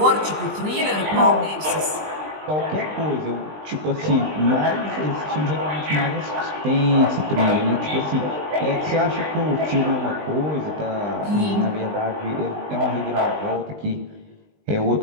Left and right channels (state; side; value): late; left; 20 ms